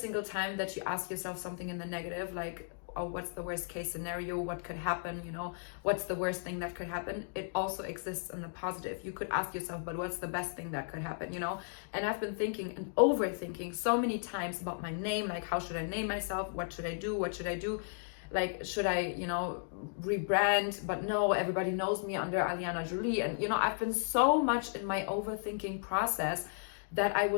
time that you ask yourself something in the negative, like, oh, what's the worst case scenario, what could happen, you know, what's the worst thing that could happen, it also exists in the positive. You could ask yourself, but what's the best thing that could happen, you know? And I've been thinking and overthinking so many times about my name, like, how should I name myself, what should I do, like, should I, you know, rebrand? But no, everybody knows me under Alina Jolie. And, you know, I've been so much in my overthinking process that I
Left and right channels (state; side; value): silent; right; digital silence